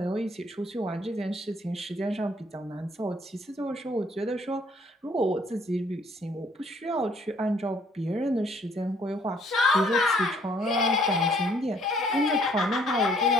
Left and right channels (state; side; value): normal; both; correlation 0.63